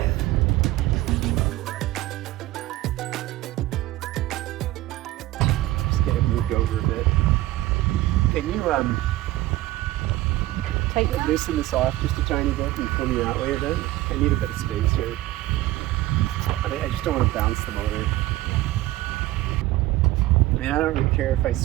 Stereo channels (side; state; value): left; quieter; 16.7 dB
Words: Just get it moved over a bit. Can you loosen this off just a tiny bit and pull me that way a bit? I need a bit of space here. I just don't want to bounce the motor. I mean, I don't really care if I